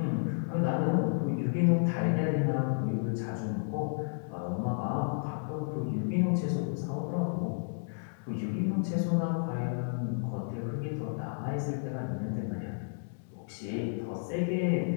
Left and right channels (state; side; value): silent; right; digital silence